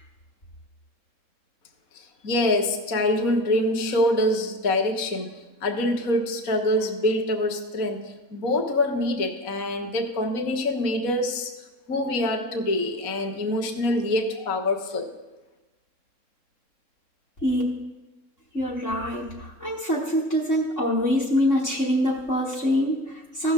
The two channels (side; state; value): right; late; 4.1 ms